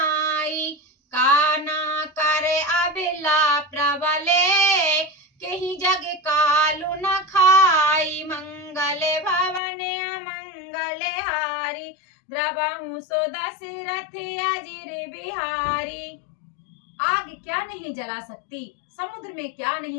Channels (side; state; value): right; drops out; at 9.6 s